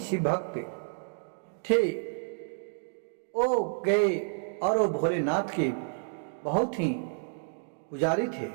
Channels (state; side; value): silent; left; digital silence